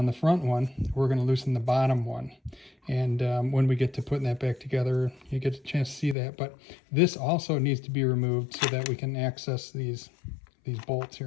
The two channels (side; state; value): right; drops out; at 6.2 s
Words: the front one, we're going to loosen the bottom one. And when we get to putting that back together, you get a chance to see that. But this also needs to be removed so that we can access these bolts